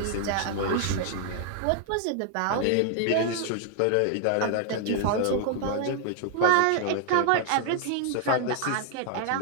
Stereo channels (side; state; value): both; different; correlation 0.00